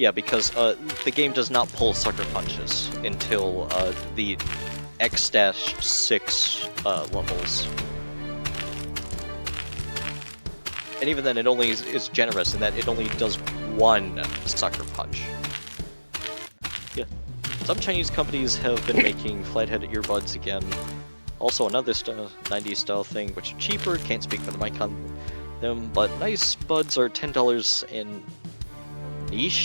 because the game does not pull sucker punches until the X-6 levels. And even then, it only is generous in that it only does 1 sucker punch. Yeah. Some Chinese companies have been making flathead earbuds again. Also another 90s style thing, which are cheaper, can't speak for the mic on them, but nice buds are $10 and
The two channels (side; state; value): both; inverted; correlation -1.00